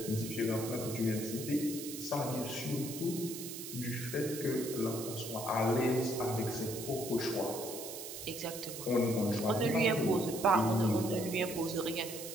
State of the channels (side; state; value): right; noise; hiss, 9 dB below the sound